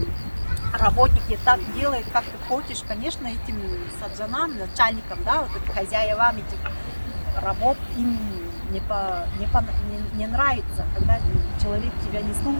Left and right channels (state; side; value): inverted; both; correlation -1.00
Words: работник не так делает, как ты хочешь, конечно, этим саджанам, начальникам, да, вот этим хозяевам этих работ им не нравится, когда человек тебя не